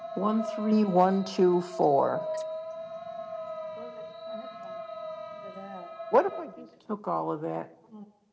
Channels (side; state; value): both; identical; correlation 1.00